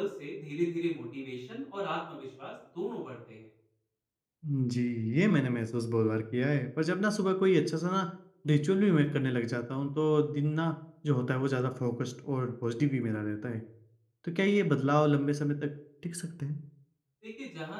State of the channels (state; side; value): identical; both; correlation 1.00